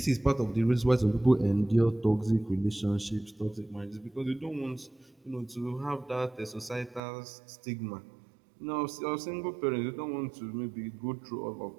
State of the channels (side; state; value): left; drops out; at 7.0 s